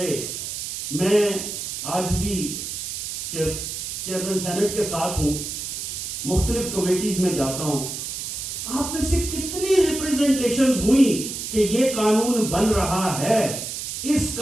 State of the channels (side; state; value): right; noise; hiss, 6 dB below the sound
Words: میں آج بھی چیئرمین سینٹ کے ساتھ ہوں, مختلف کمیٹیز میں جاتا ہوں, آپ میں سے کتنی ریپریزنٹیشنز ہوئی کہ یہ قانون بن رہا ہے, اس